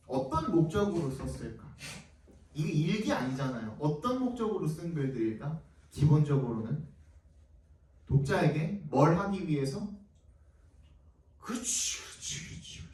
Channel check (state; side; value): identical; both; correlation 1.00